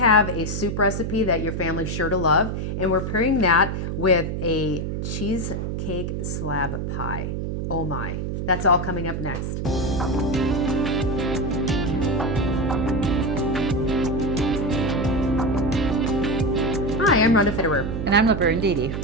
a soup recipe that your family's sure to love, and we're pairing that with a cheesecake slab pie. Oh my, that's all coming up next. Hi, I'm Rhonda Fitterer. And I'm Laverne Dede.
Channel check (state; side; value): noise; right; hum, 3 dB below the sound